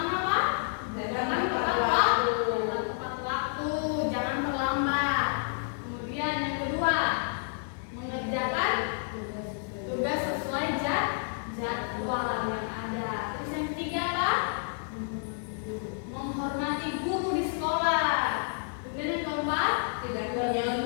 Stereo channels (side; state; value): right; silent; digital silence